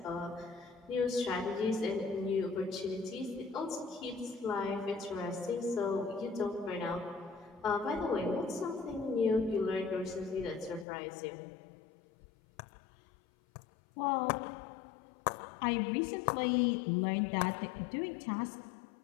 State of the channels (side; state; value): right; drops out; at 10.9 s